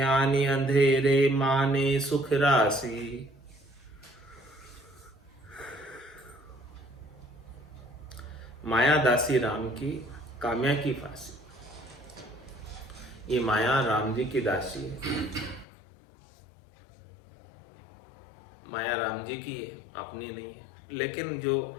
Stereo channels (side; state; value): right; drops out; at 15.7 s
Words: अंधेरे माने सुख राशि। माया दासी राम की काम्या की फांसी। ये माया राम जी की दासी है। माया राम जी की है, अपनी नहीं है। लेकिन जो